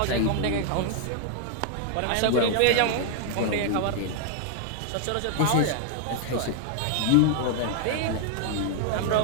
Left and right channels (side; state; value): both; different; correlation 0.00